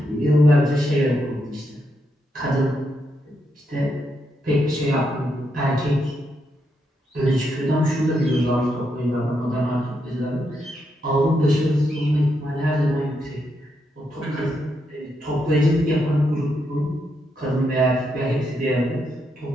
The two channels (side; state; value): both; normal; correlation 0.81